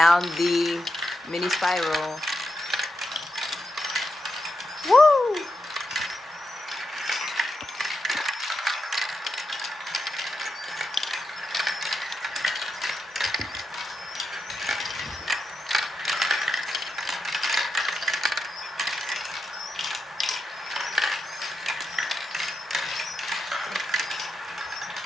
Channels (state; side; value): normal; both; correlation 0.86